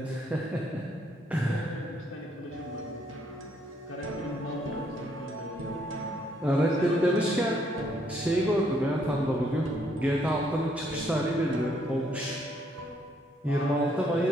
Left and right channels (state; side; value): normal; both; correlation 0.70